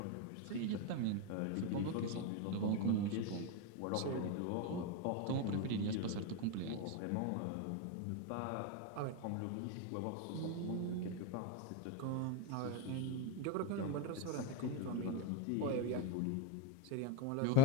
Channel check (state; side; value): different; both; correlation 0.02